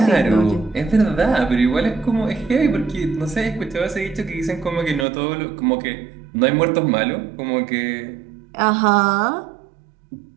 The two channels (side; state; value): left; drops out; at 5.1 s